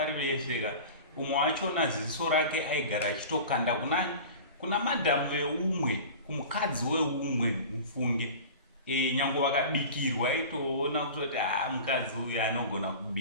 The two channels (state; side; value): inverted; both; correlation -0.36